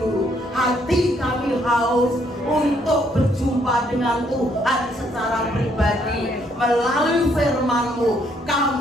hati kami haus untuk berjumpa dengan Tuhan secara pribadi. Melalui firman-Mu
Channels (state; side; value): normal; both; correlation 0.69